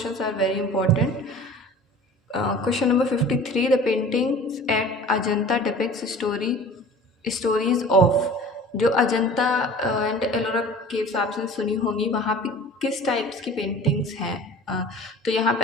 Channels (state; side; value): normal; both; correlation 0.42